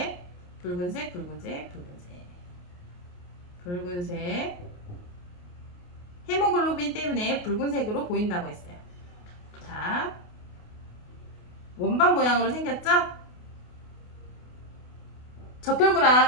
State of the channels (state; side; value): late; right; 28 ms